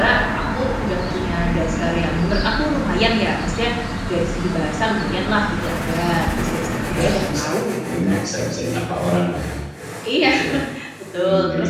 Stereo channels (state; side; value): identical; both; correlation 1.00